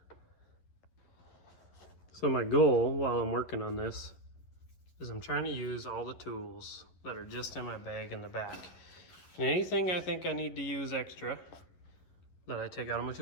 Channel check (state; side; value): late; right; 11 ms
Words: So my goal while I'm working on this is I'm trying to use all the tools that are just in my bag in the back. And anything I think I need to use extra that I take out of my